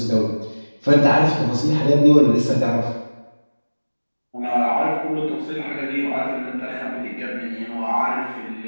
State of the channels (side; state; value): both; inverted; correlation -1.00